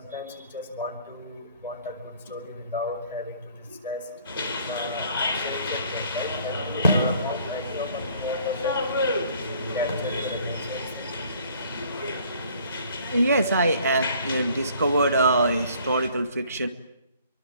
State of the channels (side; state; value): both; inverted; correlation -0.57